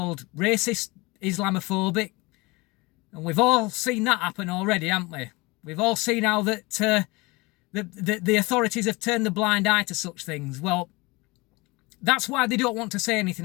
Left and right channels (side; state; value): right; quieter; 24.1 dB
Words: racist, Islamophobic. And we've all seen that happen already, haven't we? We've all seen how that the authorities have turned the blind eye to such things. Well, that's why they don't want to say